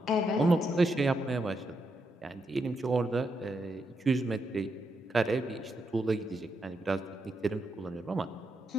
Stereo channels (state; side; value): normal; both; correlation 0.82